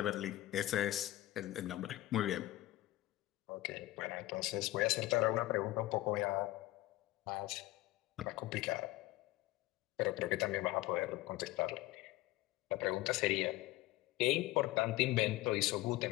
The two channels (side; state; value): right; quieter; 17.2 dB